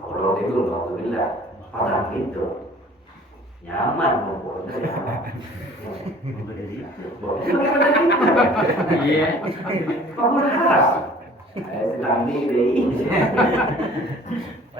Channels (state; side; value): normal; both; correlation 0.50